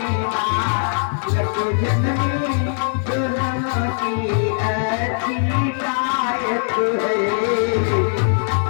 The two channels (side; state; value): right; silent; digital silence